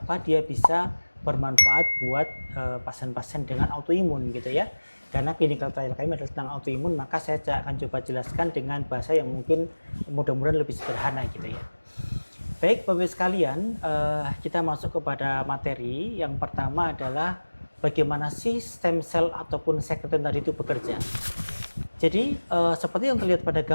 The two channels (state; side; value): inverted; both; correlation -1.00